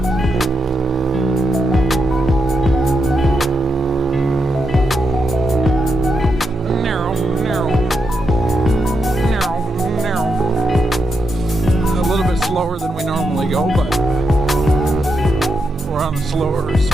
Slower than we normally go, but we're on a slower,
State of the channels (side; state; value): both; normal; correlation 0.83